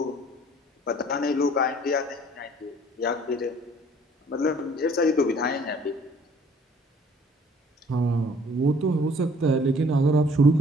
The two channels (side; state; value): both; normal; correlation 0.56